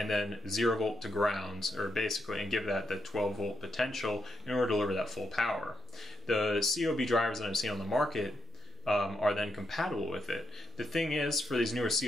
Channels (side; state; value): both; normal; correlation 0.82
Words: then 0 volt to grounds, or basically, and give that the 12 volt potential in order to deliver that full power. The COB drivers that I've seen on the market are then compatible with it. The thing is, for these newer